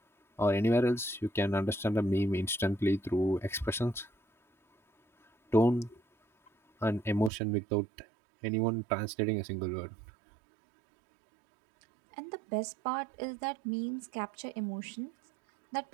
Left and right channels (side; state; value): left; drops out; at 7.3 s